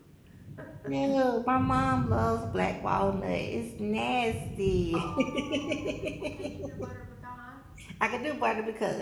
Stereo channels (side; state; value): both; identical; correlation 1.00